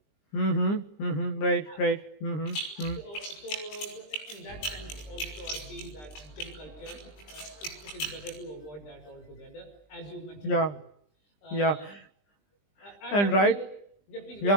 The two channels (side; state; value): right; late; 20 ms